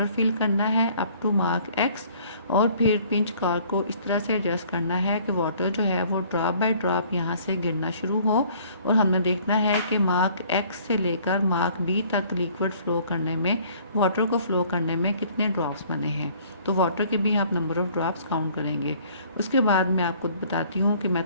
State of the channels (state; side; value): inverted; both; correlation -0.56